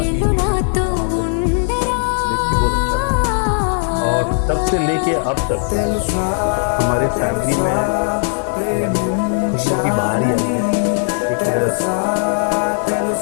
इवनिंग में मैं वहाँ पे, एंड देख के बहुत अच्छा लगा। और तब से लेके अब तक हमारे फैमिली में यानी खुशियों की बहार ही आई है। एक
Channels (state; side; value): silent; right; digital silence